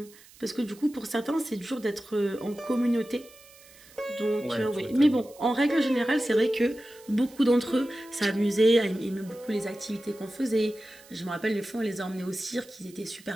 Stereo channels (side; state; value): right; noise; hiss, 24 dB below the sound